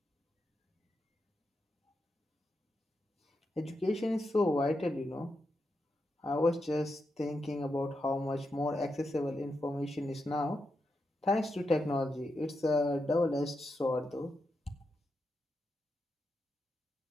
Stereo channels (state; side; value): normal; both; correlation 0.86